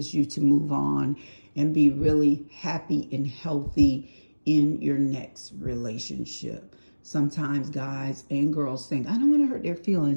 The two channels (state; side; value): inverted; both; correlation -1.00